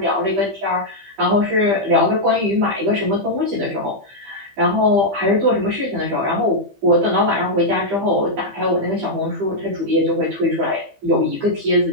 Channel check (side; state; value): left; late; 15 ms